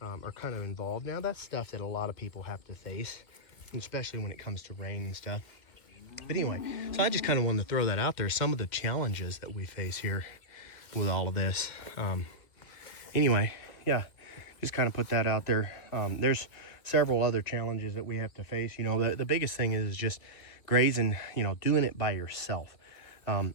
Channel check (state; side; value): late; right; 2.4 ms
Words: kind of involved. Now, that's stuff that a lot of people have to face, especially when it comes to rain and stuff. But anyway, so I just kind of wanted to throw that out there, some of the challenges that we face here with all of this. Anyway, yeah, just kind of put that out there. There's several other challenges that we have to face. You know, the biggest thing is just grazing, you know, doing it by yourself. And